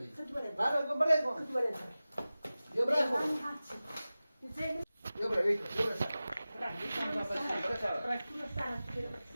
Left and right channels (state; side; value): inverted; both; correlation -0.96